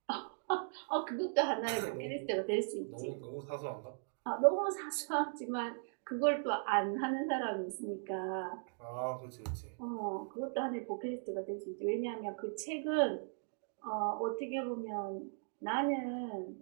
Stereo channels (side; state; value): left; silent; digital silence